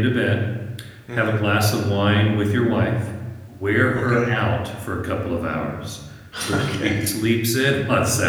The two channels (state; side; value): identical; both; correlation 1.00